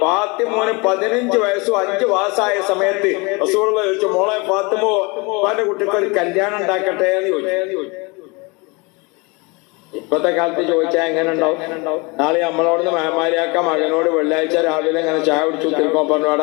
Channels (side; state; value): right; quieter; 27.8 dB